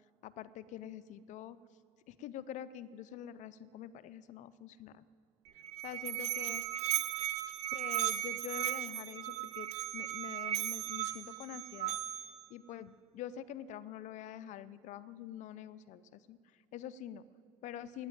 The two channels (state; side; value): quieter; left; 5.3 dB